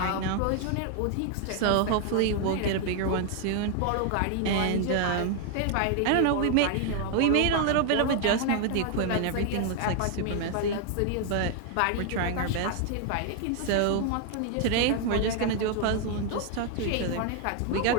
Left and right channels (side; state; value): both; different; correlation 0.00